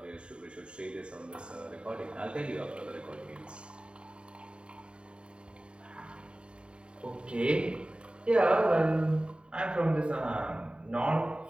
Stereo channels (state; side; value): late; left; 0.053 ms